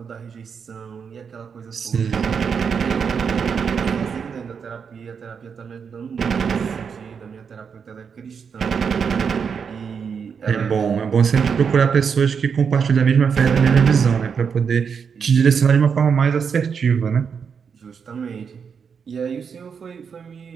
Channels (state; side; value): quieter; left; 6.4 dB